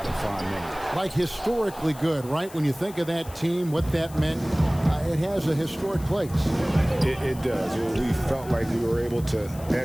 of fond memories. Like historically good, right? When you think of that team, what that meant, it has a historic place. It does. We felt like we were able to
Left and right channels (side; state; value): left; noise; hiss, 19 dB below the sound